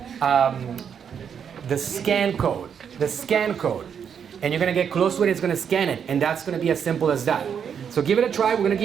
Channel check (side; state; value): left; quieter; 7.6 dB